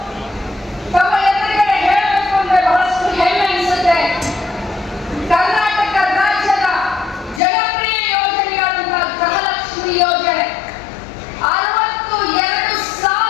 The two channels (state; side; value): drops out; right; at 7.4 s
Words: ತಮ್ಮ ಎದುರುಗಡೆ ಹೇಳಬೇಕು ಅಂದ್ರೆ ಬಹಳಷ್ಟು ಹೆಮ್ಮೆ ಅನಿಸುತ್ತೆ. ಕರ್ನಾಟಕ ರಾಜ್ಯದ ಜನಪ್ರಿಯ ಯೋಜನೆಯಾದಂತಹ ಗೃಹಲಕ್ಷ್ಮಿ ಯೋಜನೆ